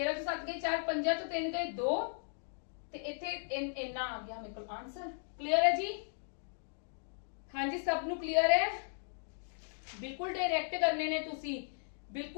ਚੋਂ 7 ਗਏ 4, 5 ਚੋਂ 3 ਗਏ 2 ਤੇ ਇੱਥੇ ਇੰਨਾ ਆ ਗਿਆ ਮੇਰੇ ਕੋਲ ਆਨਸਰ। ਕਲੀਅਰ ਹੈ ਜੀ। ਹਾਂਜੀ ਸਭ ਨੂੰ ਕਲੀਅਰ ਹੈ। ਬਿਲਕੁਲ ਡਾਇਰੈਕਟ ਕਰਨੇ ਨੇ ਤੁਸੀਂ,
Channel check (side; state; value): right; silent; digital silence